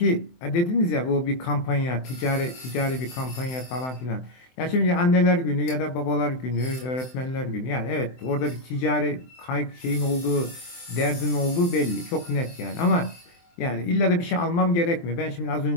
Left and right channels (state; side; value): late; right; 23 ms